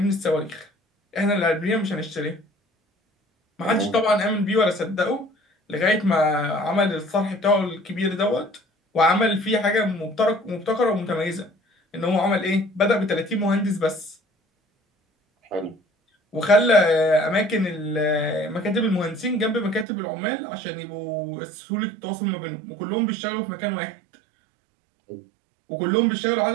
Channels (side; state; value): left; drops out; at 19.9 s